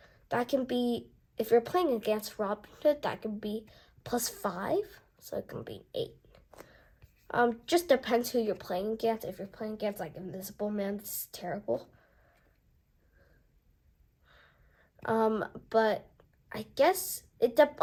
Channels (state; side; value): identical; both; correlation 1.00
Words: That can be, if you're playing against Robin Hood, that can be +5, so it can be 8. Just depends who you're playing against. If you're playing against like Invisible Man, this is terrible. But I guess it